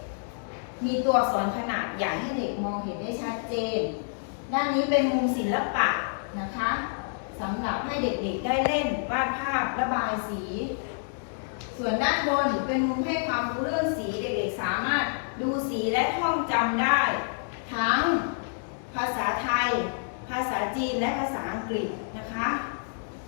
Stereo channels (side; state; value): right; silent; 59 dB below the other